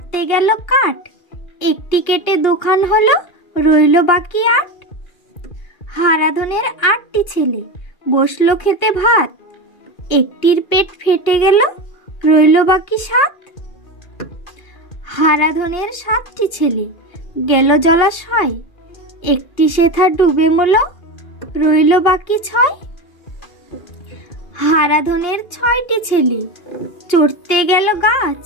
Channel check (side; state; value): right; late; 2.4 ms